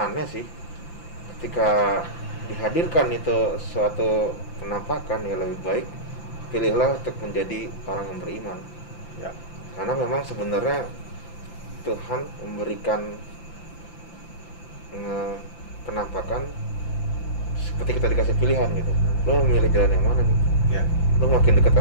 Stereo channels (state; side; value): late; right; 5.9 ms